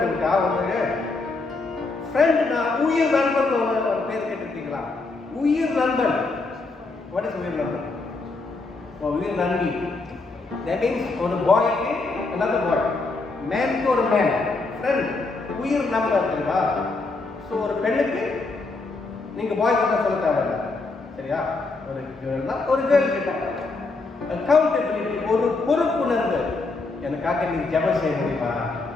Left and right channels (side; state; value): right; quieter; 3.6 dB